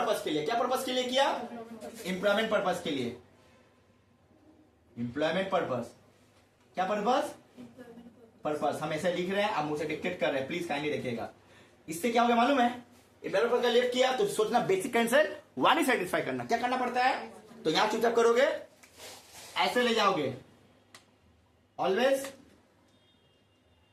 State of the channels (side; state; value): both; identical; correlation 1.00